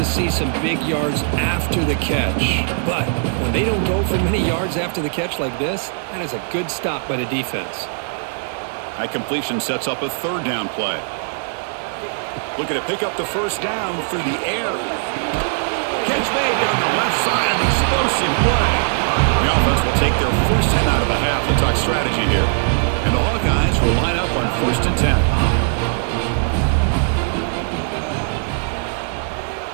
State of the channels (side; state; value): left; silent; 66 dB below the other